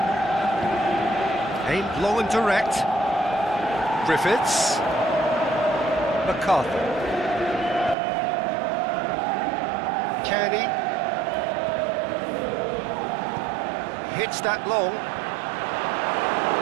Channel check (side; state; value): left; drops out; at 8.0 s